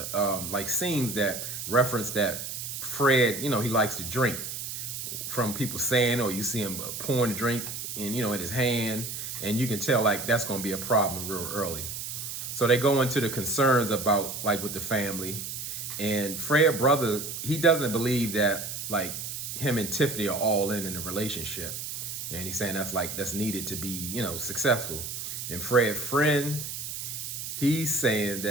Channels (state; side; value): noise; right; hiss, 6 dB below the sound